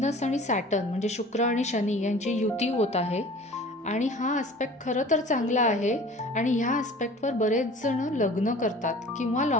आणि सॅटर्न म्हणजे शुक्र आणि शनी यांची युती होत आहे आणि हा ॲस्पेक्ट खरं तर चांगला आहे आणि ह्या ॲस्पेक्टवर बरेच जण लग्न करतात किंवा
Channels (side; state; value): both; normal; correlation 0.44